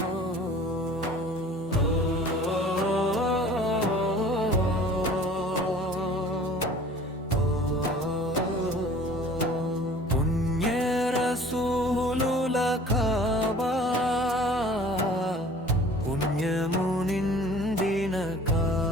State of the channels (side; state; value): both; normal; correlation 0.47